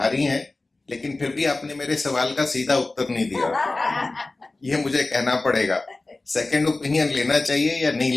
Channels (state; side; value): quieter; right; 3.2 dB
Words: हैं, लेकिन फिर भी आपने मेरे सवाल का सीधा उत्तर नहीं दिया। ये मुझे कहना पड़ेगा, सेकंड ओपिनियन लेना चाहिए या नहीं